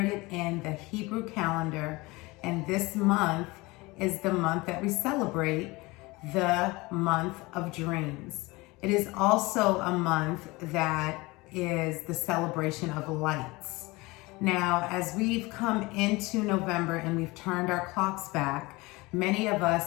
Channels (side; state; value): right; quieter; 22.8 dB